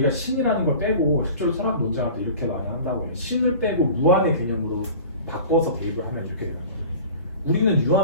신이라는 걸 빼고 실제로 철학 논쟁할 때 이렇게 많이 한다고 해요. 신을 빼고 무한의 개념으로 바꿔서 대입을 하면 이렇게 되는 거예요. 우리는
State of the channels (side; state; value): both; inverted; correlation -0.41